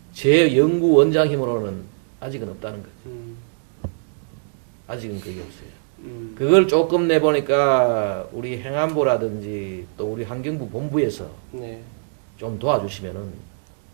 제 연구원장 힘으로는 아직은 없다는 거죠. 아직은 그게 없어요. 그걸 조금 내보니까 우리 행안부라든지 또 우리 환경부 본부에서 좀 도와주시면은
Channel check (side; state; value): left; silent; digital silence